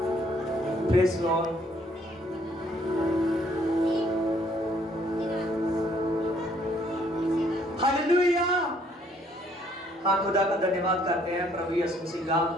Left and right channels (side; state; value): both; normal; correlation 0.64